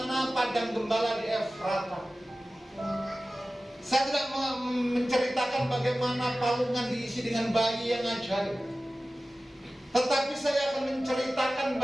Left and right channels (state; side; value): normal; both; correlation 0.96